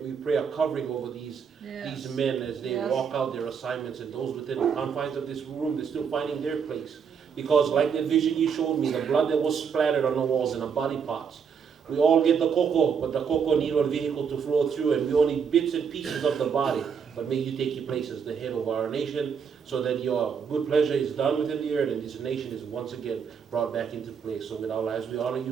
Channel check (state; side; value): quieter; left; 6.7 dB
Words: a covering over these men as they walk out their assignments, and those within the confines of this room, they're still finding their place. Because like the vision you showed me, the blood that was splattered on the walls and the body parts, we all get the cocoa, but the cocoa needs a vehicle to flow through, and we only bits and pieces of the body. but may you take your place as the head of our nation, so that your good pleasure is done within the earth, and this nation is once again brought back into place. So with our lives, we honor you